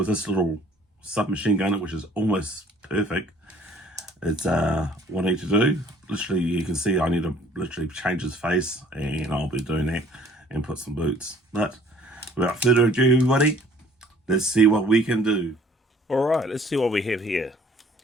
this little submachine gunner, which is almost perfect, it's what I need to do. Literally, you can see I need to literally change his face, and I'll be doing that and put some boots. But without further ado, everybody, let's see what we can do. Alright, let's see what we have here.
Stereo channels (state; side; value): normal; both; correlation 0.56